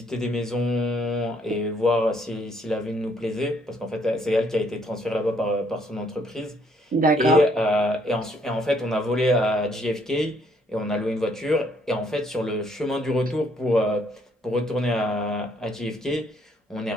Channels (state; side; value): normal; both; correlation 0.67